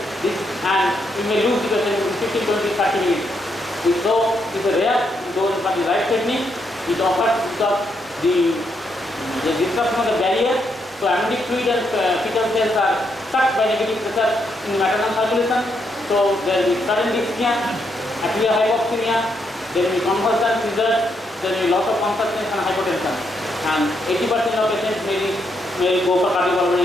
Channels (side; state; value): both; normal; correlation 0.78